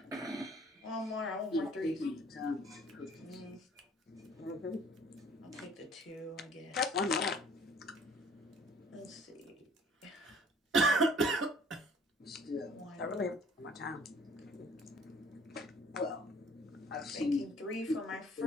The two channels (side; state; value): both; normal; correlation 0.55